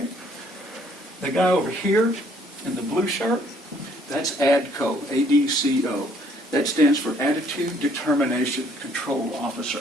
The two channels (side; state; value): both; normal; correlation 0.63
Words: The guy over here in the blue shirt, that's ADCO, A-D-C-O. That stands for Attitude Determination Control Officer.